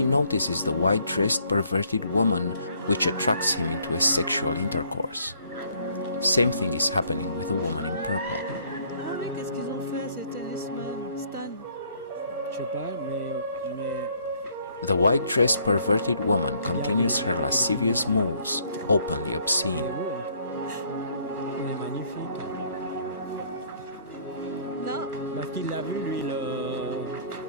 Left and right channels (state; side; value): inverted; both; correlation -0.63